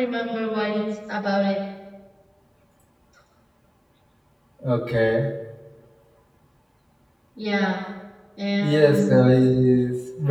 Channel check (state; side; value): identical; both; correlation 1.00